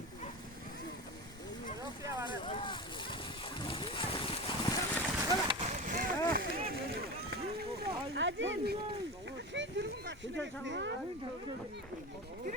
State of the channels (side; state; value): both; normal; correlation 0.26